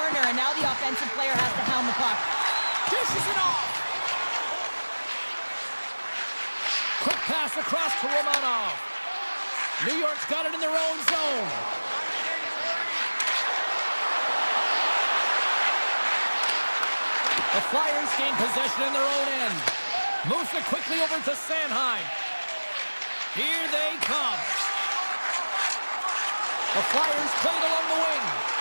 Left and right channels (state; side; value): inverted; both; correlation -1.00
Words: and now the offensive player has to hound the puck. Dishes it off! Quick pass across to Romanov. New York's got it in their own zone. The Flyers gain possession in their own end. Moves it quickly over to Sanheim. Here they come. The Flyers played along the wing.